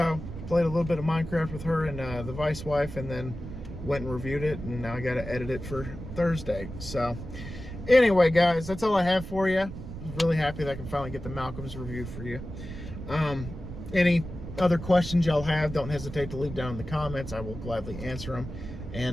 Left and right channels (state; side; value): noise; right; rumble, 10 dB below the sound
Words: played a little bit of Minecraft with her and the vice wife, and then went and reviewed it, and now I got to edit it for Thursday. So anyway, guys, that's all I have for you. Really happy that I can finally get the Malcolm's review for you. Any other questions y'all have, don't hesitate to leave down in the comments. I will gladly answer them.